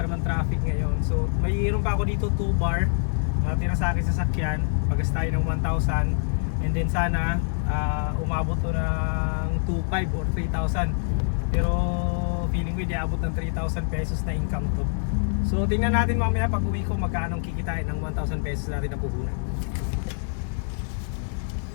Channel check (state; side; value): silent; right; digital silence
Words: naman traffic ngayon. So mayroon pa ako dito 2 bar natira sa akin sa sakyan. Pagas tayo ng 1,000. And then sana umabot to ng 2,500 or 3,000. Pero feeling ko hindi abot ng 3,000 pesos na income to. So tingnan natin mamaya pag uwi ko magkano kikitain ng 1,000 pesos natin na puhunan.